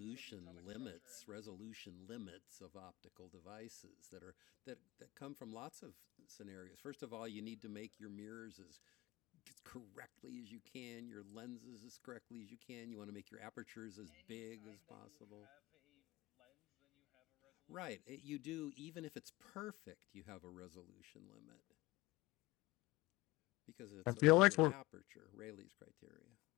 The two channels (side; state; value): right; quieter; 20.4 dB